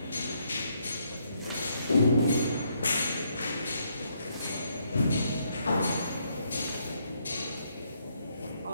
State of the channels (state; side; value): inverted; both; correlation -0.73